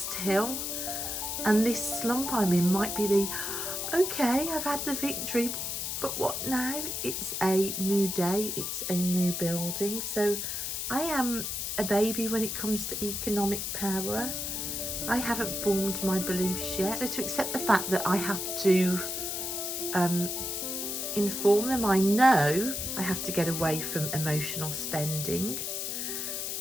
hill, and this slump I'm in might be okay, I've had the victory, but what now? It's a new day, it's a new building. So I am a baby when it comes to economic power. I haven't formed my beliefs yet. So to accept the fact that I have to inform them, I know I have to get away from emotional spending.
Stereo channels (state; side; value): noise; left; hiss, 3 dB below the sound